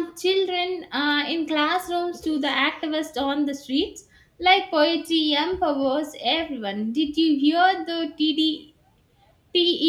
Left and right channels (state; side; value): identical; both; correlation 1.00